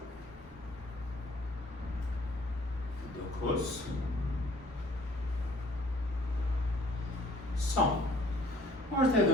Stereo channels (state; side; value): normal; both; correlation 0.57